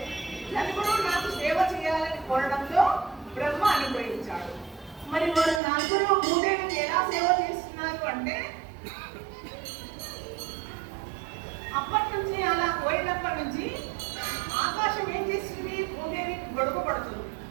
నలుగురు నాకు సేవ చేయాలని కోరడంతో బ్రహ్మ అనుగ్రహించాడు. మరి వారు నలుగురు భూదేవికి ఎలా సేవ చేస్తున్నారు అంటే, అప్పటి నుంచి అలా కోరినప్పటి నుంచి ఆకాశం ఏం చేస్తుంది, భూదేవికి గొడుగు పడుతుంది.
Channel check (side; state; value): left; drops out; at 5.6 s